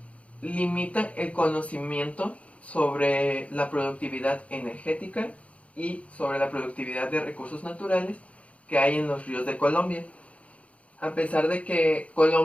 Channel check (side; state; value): right; late; 0.064 ms